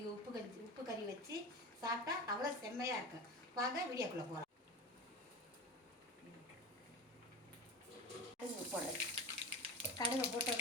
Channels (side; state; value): both; normal; correlation 0.28